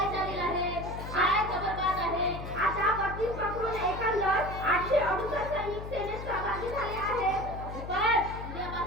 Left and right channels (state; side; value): noise; left; hum, 8 dB below the sound